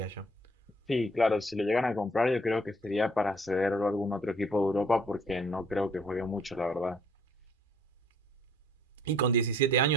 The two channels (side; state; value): both; normal; correlation 0.60